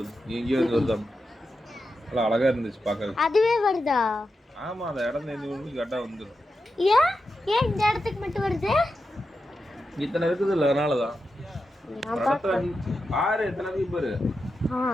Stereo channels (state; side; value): normal; both; correlation 0.89